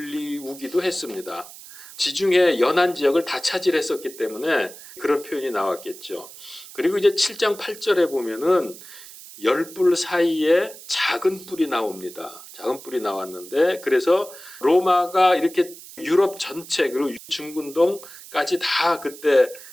했습니다. 지중해 연안 지역을 다 차지했었기 때문에 그런 표현이 나왔겠죠. 그리고 이제 7장 8절에 보면은 10뿔 사이에 작은 뿔이 나옵니다. 작은 뿔이 나왔는데 그래서 로마가 이렇게 유럽 전체 그리고 중근동까지 다 그때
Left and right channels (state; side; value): noise; right; hiss, 17 dB below the sound